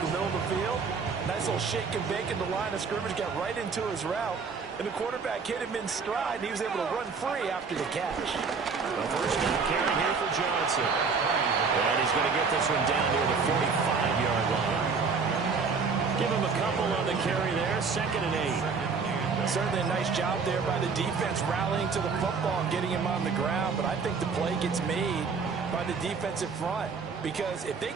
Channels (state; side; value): quieter; left; 5.2 dB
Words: middle of the field. Nice little shake and bake in the line of scrimmage, got right into his route. And the quarterback hit him in stride, and he was able to run free after the catch. The first down carry here for Johnson. And he's going to get this one down near the 45-yard line. Give him a couple on the carry there, 2nd and 8. Certainly a nice job there by the defense rallying to the football and getting him on the ground, but I think the play gets made by the defensive front because if they